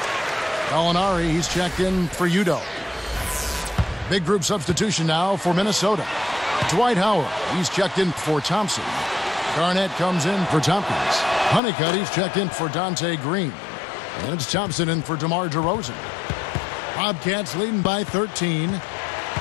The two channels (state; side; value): drops out; right; at 11.6 s